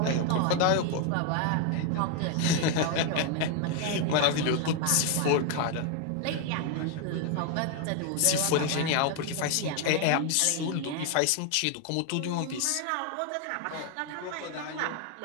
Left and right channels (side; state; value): both; different; correlation 0.01